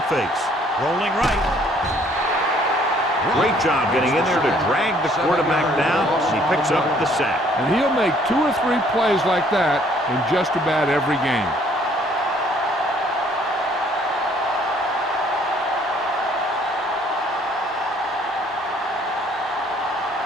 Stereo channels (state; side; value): normal; both; correlation 0.61